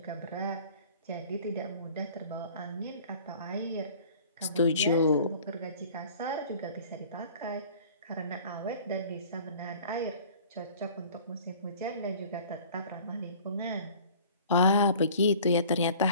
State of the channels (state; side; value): inverted; both; correlation -0.47